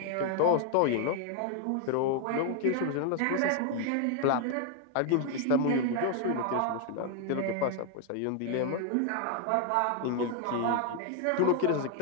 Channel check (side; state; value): both; different; correlation 0.00